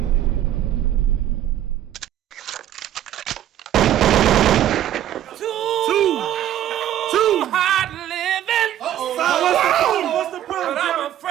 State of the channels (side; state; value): left; quieter; 11.8 dB